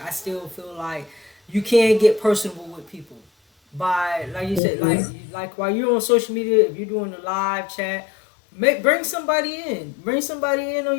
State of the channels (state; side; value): drops out; right; at 4.6 s